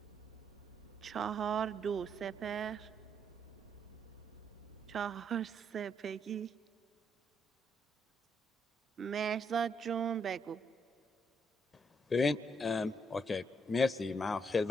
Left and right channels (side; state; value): both; normal; correlation 0.75